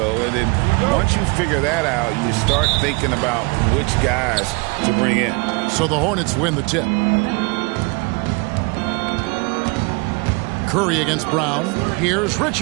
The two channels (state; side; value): quieter; left; 28.8 dB